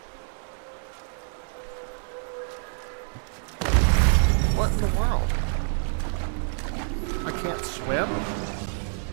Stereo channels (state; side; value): silent; left; 60 dB below the other